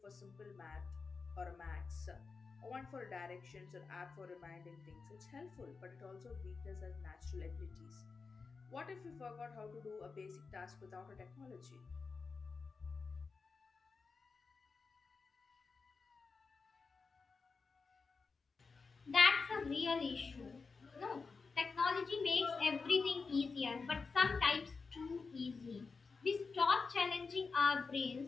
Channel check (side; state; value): right; quieter; 4.6 dB